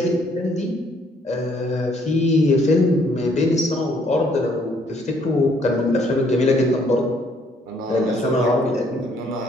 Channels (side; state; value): both; normal; correlation 0.65